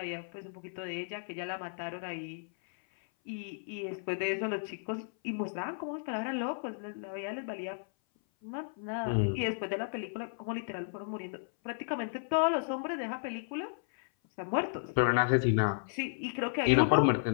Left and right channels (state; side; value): silent; right; 55 dB below the other